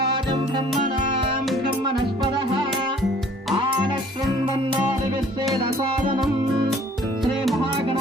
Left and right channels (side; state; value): both; normal; correlation 0.55